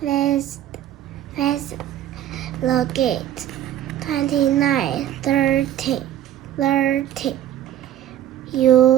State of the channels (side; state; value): left; quieter; 11.9 dB